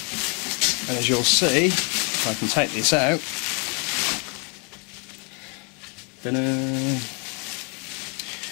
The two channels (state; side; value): quieter; right; 35.3 dB